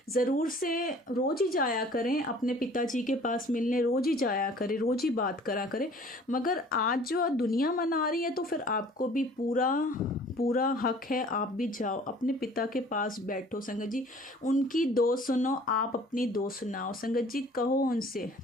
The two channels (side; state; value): both; normal; correlation 0.51